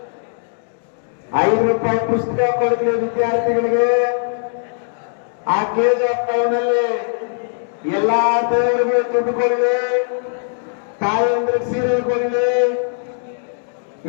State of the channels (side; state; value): right; silent; digital silence